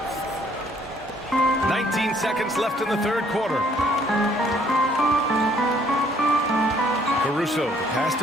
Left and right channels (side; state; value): both; normal; correlation 0.63